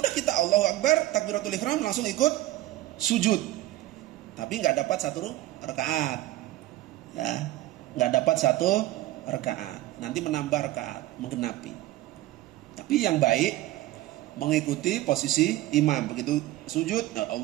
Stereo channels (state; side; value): quieter; left; 15.9 dB